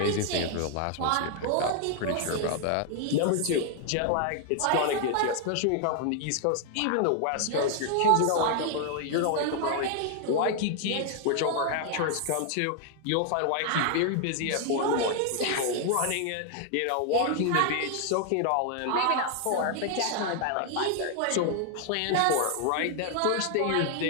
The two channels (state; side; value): different; both; correlation 0.00